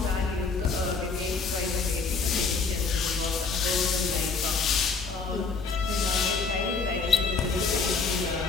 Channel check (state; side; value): quieter; right; 4.6 dB